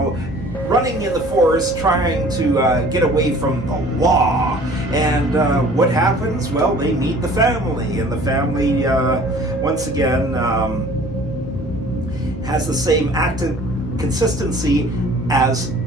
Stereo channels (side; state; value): both; normal; correlation 0.49